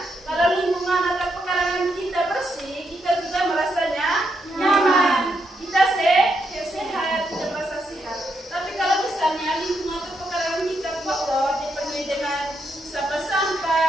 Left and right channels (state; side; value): normal; both; correlation 0.80